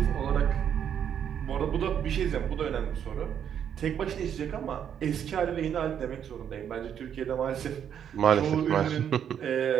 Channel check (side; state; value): left; quieter; 8.8 dB